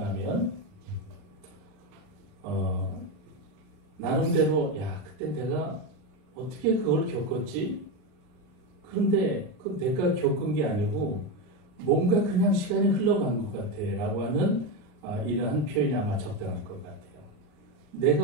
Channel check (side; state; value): left; late; 39 ms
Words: 나름대로 그때 내가 어떻게 그걸 겪었지? 그런데 그 내가 겪은 게 아니고 뭔가 그냥 시간이 흘러간 것 같아 라고 하는 이러한 표현이 아마 적당할 것 같아요. 내가